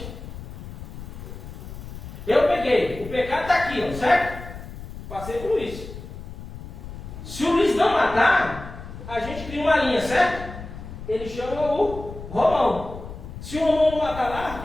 Eu peguei, o pecado está aqui, ó, certo? Passei por Luiz. Se o Luiz não matar, a gente cria uma linha, certo? Ele chama o Romão. Se o Romão não matar lá, o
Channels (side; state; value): left; noise; rumble, 12 dB below the sound